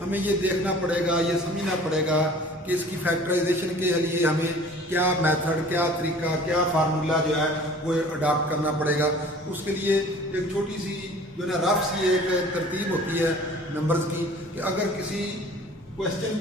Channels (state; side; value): normal; both; correlation 0.47